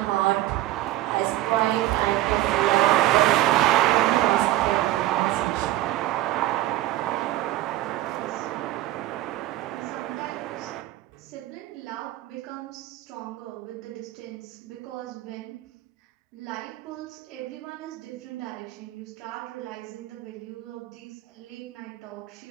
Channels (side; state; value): left; quieter; 15.5 dB